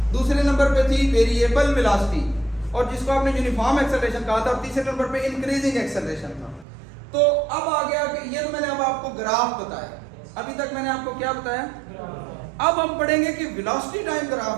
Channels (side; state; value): left; drops out; at 6.7 s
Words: दूसरे नंबर पे थी वेरिएबल वेलोसिटी, और जिसको आपने यूनिफॉर्म एक्सेलरेशन कहा था। और तीसरे नंबर पे इंक्रीजिंग एक्सेलरेशन था। तो अब आ गया कि ये तो मैंने अब आपको ग्राफ बताया। अभी तक मैंने आपको क्या बताया? अब हम पढ़ेंगे कि वेलोसिटी टाइम